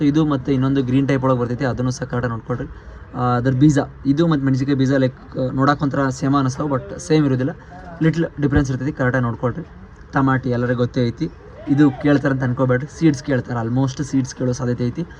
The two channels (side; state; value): both; identical; correlation 1.00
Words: ಇದು ಮತ್ತು ಇನ್ನೊಂದು ಗ್ರೀನ್ ಟೈಪ್ ಒಳಗೆ ಬರ್ತೈತಿ, ಅದನ್ನು ಸಹ ಕರೆಕ್ಟಾಗಿ ನೋಡ್ಕೊಡ್ರಿ. ಅದ್ರ ಬೀಜ ಇದು ಮತ್ತು ಮೆಣಸಿಕಾಯಿ ಬೀಜ ಲೈಕ್ ನೋಡೋಕೆ ಒಂಥರ ಸೇಮ್ ಅನ್ನಿಸ್ತಾವೆ, ಬಟ್ ಸೇಮ್ ಇರೋದಿಲ್ಲ, ಲಿಟ್ಲ್ ಡಿಫ್ರೆನ್ಸ್ ಇರ್ತೈತಿ, ಕರೆಕ್ಟಾಗಿ ನೋಡ್ಕೊಳ್ರಿ. ಟಮಾಟಿ ಎಲ್ಲರಿಗೂ ಗೊತ್ತೇ ಐತಿ, ಇದು ಕೇಳ್ತಾರೆ ಅಂತ ಅನ್ಕೋಬೇಡ್ರಿ, ಸೀಡ್ಸ್ ಕೇಳ್ತಾರೆ, ಆಲ್ಮೋಸ್ಟ್ ಸೀಡ್ಸ್ ಕೇಳೋ ಸಾಧ್ಯತೆ ಐತಿ.